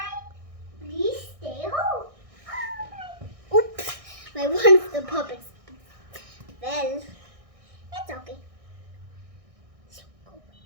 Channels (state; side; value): late; left; 1.6 ms